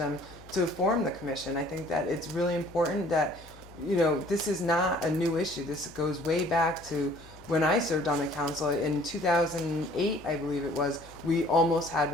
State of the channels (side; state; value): left; noise; hum, 21 dB below the sound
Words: to form the commission. I think that it's really important that, this is not a new issue. This goes way back to when I served on the council in 2008, I believe it was. We almost had